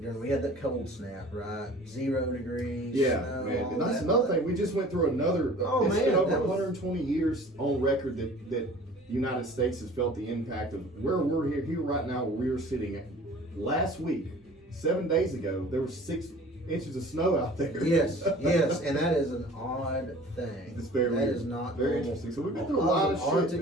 We had that cold snap, right? 0 degrees. Yeah, snow, man. all And that's that. another thing. We just went through another. It's been over that was- 120 years on record that the United States has felt the impact of where we're here right now, where we are sitting. Last week, 7 days ago, there was 6 inches of snow out there. Yes, and that is an odd thing. It's very That weird. is not very normal. interesting. So we've been through a lot of shit, Arctic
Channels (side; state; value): both; normal; correlation 0.46